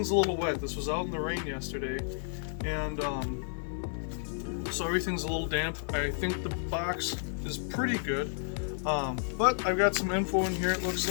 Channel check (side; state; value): right; silent; digital silence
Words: a little wet. This was out in the rain yesterday, and so everything's a little damp. I think the box is pretty good, but I've got some info in here. It looks